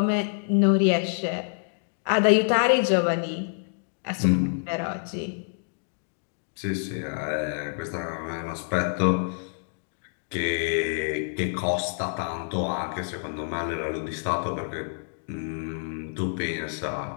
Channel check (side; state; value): right; silent; digital silence